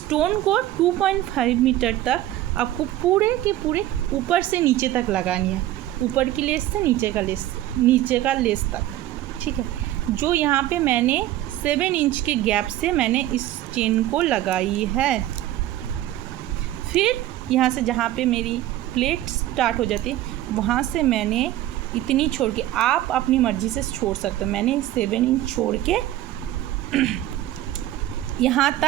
को 2.5 मीटर तक आपको पूरे के पूरे ऊपर से नीचे तक लगानी है, ऊपर की लेस से नीचे का लेस तक। ठीक है, जो यहाँ पे मैंने 7 इंच के गैप से मैंने इस चेन को लगाई है। फिर यहाँ से जहाँ पे मेरी प्लेट स्टार्ट हो जाती है वहाँ से मैंने इतनी छोड़ के, आप अपनी मर्ज़ी से छोड़ सकते हो, मैंने 7 इंच छोड़ के यहाँ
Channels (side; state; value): left; quieter; 14.1 dB